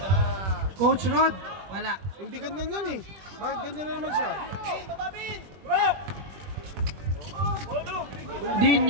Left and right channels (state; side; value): late; left; 21 ms